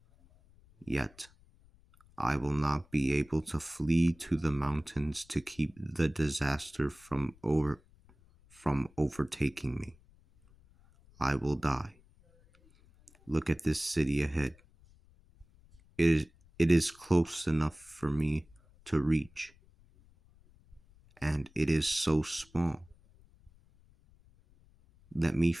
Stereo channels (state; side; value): noise; left; rumble, 28 dB below the sound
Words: Yet I will not be able to flee to the mountains to keep the disaster from overtaking me. I will die. Look at this city ahead. It is close enough for me to reach, and it is so small. Let me